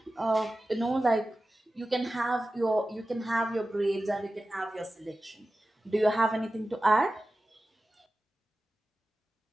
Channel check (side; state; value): both; normal; correlation 0.95